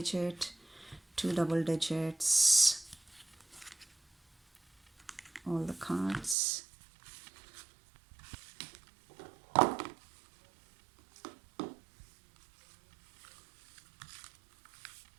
2 double digits, all the cards.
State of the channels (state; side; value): drops out; left; at 6.4 s